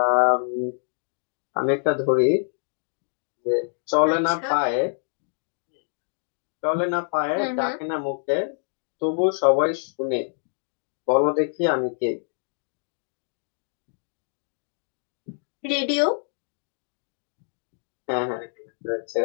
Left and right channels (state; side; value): silent; right; digital silence